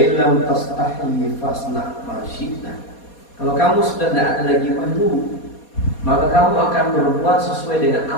tastahi fasna ma syi'ta." Kalau kamu sudah tidak ada lagi malu, maka kamu akan berbuat sesuai dengan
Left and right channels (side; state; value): right; late; 4.2 ms